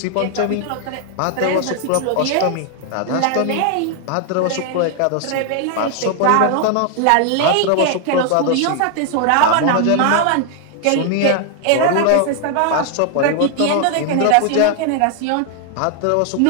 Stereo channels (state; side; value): different; both; correlation 0.00